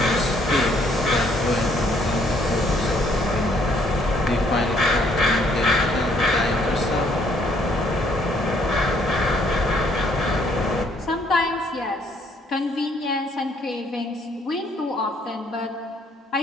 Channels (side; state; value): both; normal; correlation 0.66